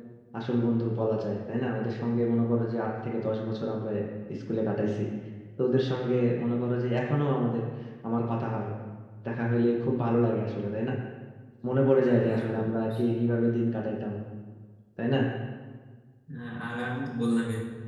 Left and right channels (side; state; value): both; identical; correlation 1.00